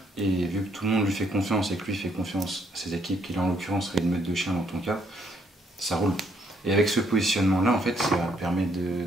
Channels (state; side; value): normal; both; correlation 0.70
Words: Et vu que tout le monde lui fait confiance et que lui fait confiance à ses équipes, qui là, en l'occurrence, serait une meute de chiens dans ton cas, ça roule. Et avec ce positionnement-là, en fait, ça permet